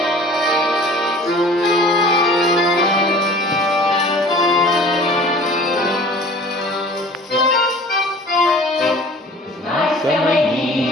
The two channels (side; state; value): both; normal; correlation 0.46